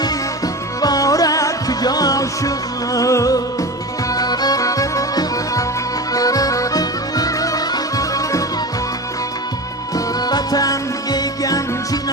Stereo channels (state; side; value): normal; both; correlation 0.28